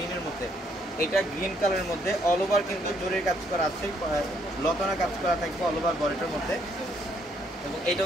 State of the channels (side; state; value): both; normal; correlation 0.70